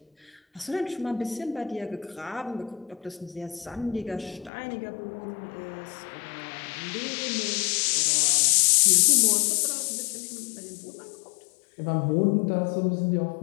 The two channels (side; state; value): right; drops out; at 4.5 s